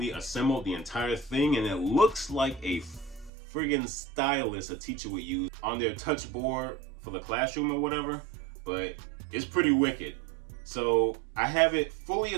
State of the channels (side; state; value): left; drops out; at 3.3 s